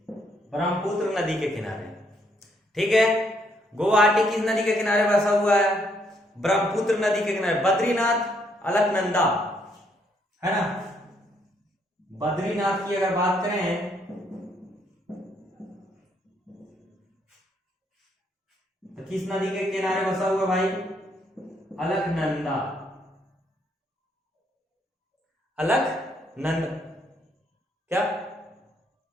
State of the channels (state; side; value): normal; both; correlation 0.71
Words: ब्रह्मपुत्र नदी के किनारे। ठीक है, गुवाहाटी किस नदी के किनारे बसा हुआ है? ब्रह्मपुत्र नदी के किनारे। बद्रीनाथ, अलकनंदा, है ना। बद्रीनाथ की अगर बात करें तो किस नदी के किनारे बसा हुआ भाई? अलकनंदा, अलकनंदा। क्या